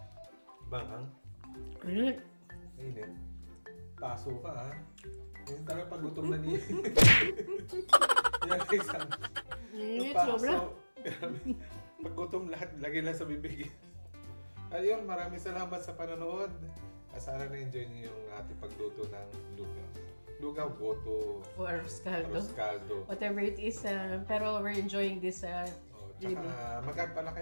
bangang. Correct. Init. Paso ka, ha? Yung talaga pag gutom na niya. Yan, isang... Init, paso. sobra. Pag gutom lahat, lagi lang sa bibig. Ayun, maraming salamat sa panonood. Sana na-enjoy niyo yung ating pagluto ng lugaw. Lugaw, goto, O arroz caldo. arroz caldo. Whatever it is. Pero we're enjoying this. Tsaka mag-add pala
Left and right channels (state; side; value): inverted; both; correlation -1.00